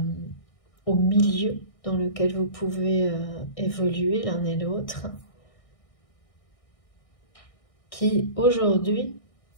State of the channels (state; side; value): late; right; 1.6 ms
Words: au milieu dans lequel vous pouvez évoluer l'un et l'autre, qui aujourd'hui,